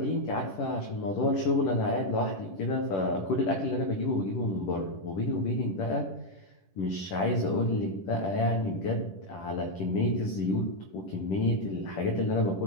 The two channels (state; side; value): late; right; 10 ms